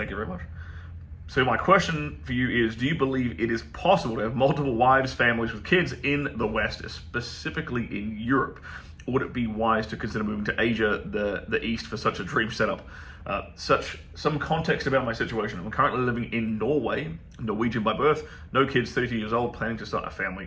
you very much. So my question for you is, do you believe it is possible to have multiple wives, families with kids in the West, specifically in Europe? Or would it be wise to consider moving to Asia, the East, for such a dream setup? Some context about my situation. I'm currently living in Norway, Norwegian by birth, no kids, 32 years old, planning to start a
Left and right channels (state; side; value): identical; both; correlation 1.00